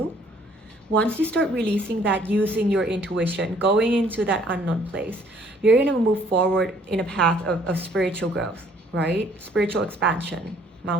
Once you start releasing that, using your intuition, going into that unknown place, you're going to move forward in a path of spiritual growth, right? Spiritual expansion,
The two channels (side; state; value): both; normal; correlation 0.61